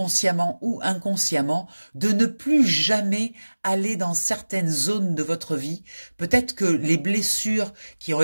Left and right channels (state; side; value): inverted; both; correlation -1.00